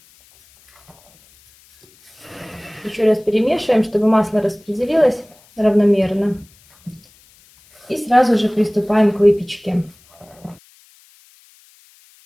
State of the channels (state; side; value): noise; left; hiss, 29 dB below the sound